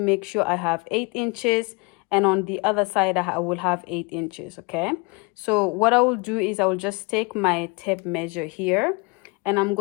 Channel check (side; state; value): right; quieter; 29.3 dB